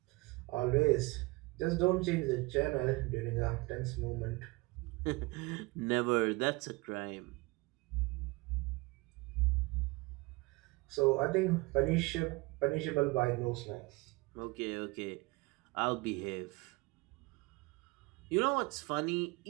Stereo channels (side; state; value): left; quieter; 24.3 dB